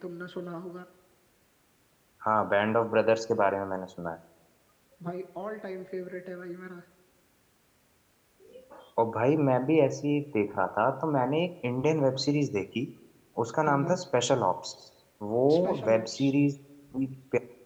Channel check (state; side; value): identical; both; correlation 1.00